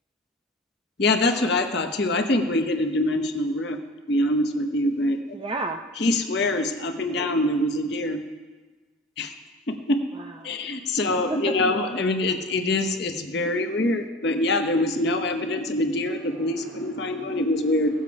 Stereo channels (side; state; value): both; normal; correlation 0.37